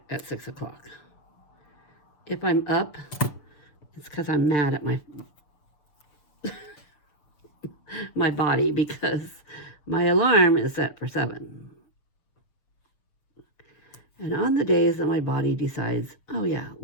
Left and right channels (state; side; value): late; right; 6.8 ms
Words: at 6 o'clock. If I'm up, it's because I'm mad at my body, because my alarm is set for 7. And on the days that my body decides, oh yeah,